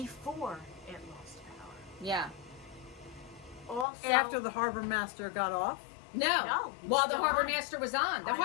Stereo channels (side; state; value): right; drops out; at 3.9 s